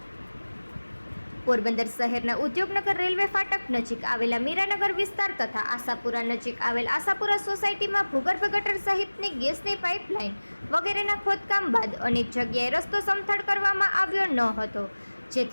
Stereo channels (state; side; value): inverted; both; correlation -1.00